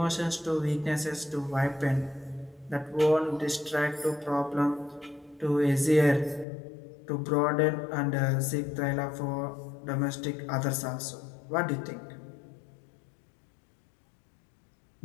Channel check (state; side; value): drops out; right; at 6.5 s